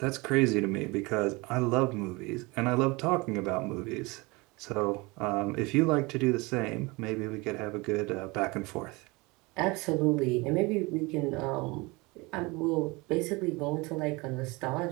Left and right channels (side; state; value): left; quieter; 24.9 dB